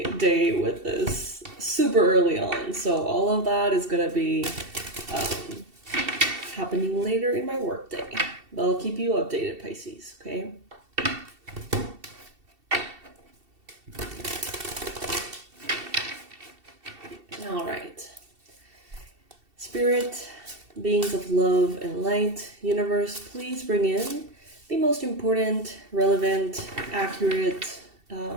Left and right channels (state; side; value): late; left; 2.7 ms